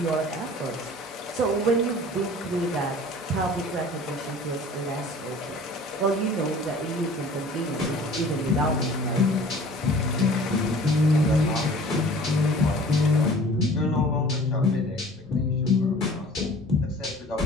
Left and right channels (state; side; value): normal; both; correlation 0.46